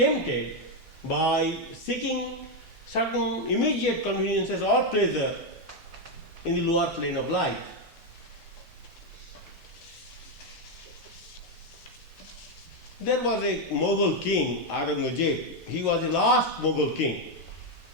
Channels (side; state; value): both; normal; correlation 0.04